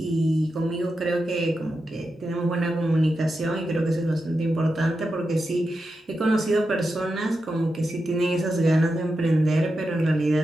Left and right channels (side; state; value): both; normal; correlation 0.89